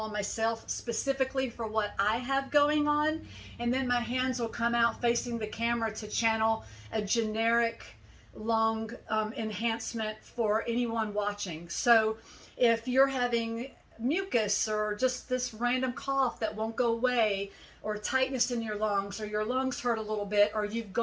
on myself specifically for what I have going on, and then my hands will come out facing the camera to channel a generic lung enhancement for anyone watching. So if you're having mucus or just this random cough that won't go away, or tightness in your lungs, or your lungs hurt a little bit, or you've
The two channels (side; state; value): both; identical; correlation 1.00